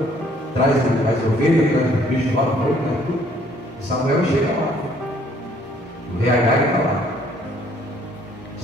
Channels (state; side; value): normal; both; correlation 0.62